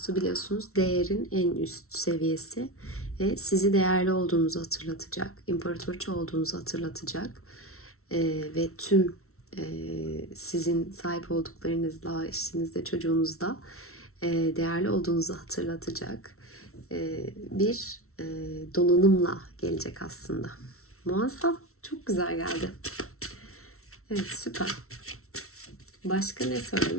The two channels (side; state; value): right; late; 0.63 ms